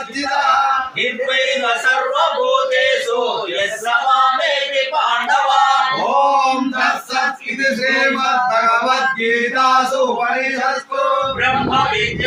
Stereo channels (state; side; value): identical; both; correlation 1.00